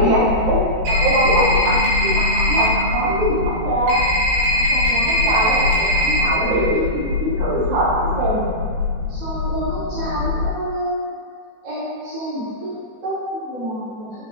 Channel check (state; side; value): late; left; 18 ms